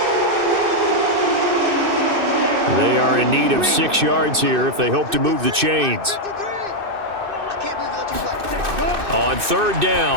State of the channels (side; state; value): left; late; 2.6 ms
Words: They are in need of 6 yards here if they hope to move the chains. On 3rd